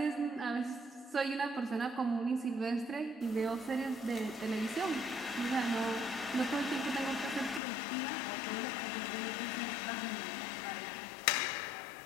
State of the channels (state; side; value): drops out; right; at 7.6 s